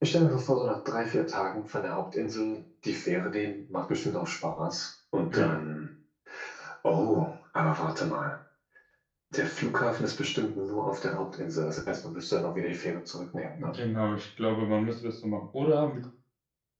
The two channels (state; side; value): identical; both; correlation 1.00